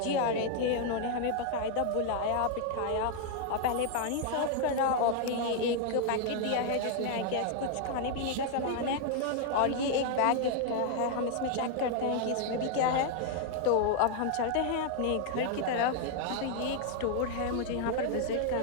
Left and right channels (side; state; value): both; different; correlation 0.00